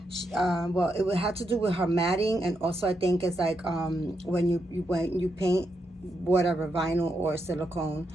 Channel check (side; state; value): both; normal; correlation 0.82